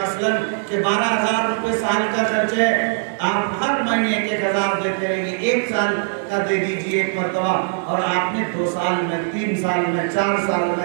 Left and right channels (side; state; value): left; silent; digital silence